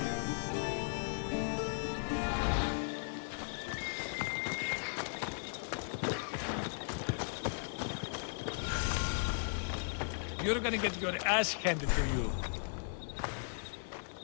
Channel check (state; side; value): silent; right; digital silence